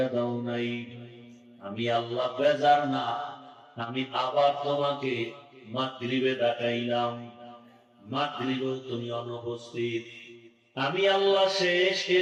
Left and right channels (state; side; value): identical; both; correlation 1.00